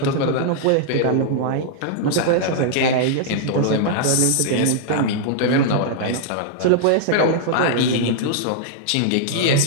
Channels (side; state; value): both; different; correlation -0.01